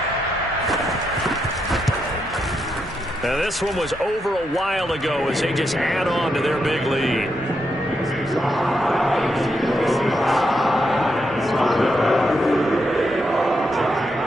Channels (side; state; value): both; normal; correlation 0.82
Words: Now this one was over a while ago as they just add on to their big lead.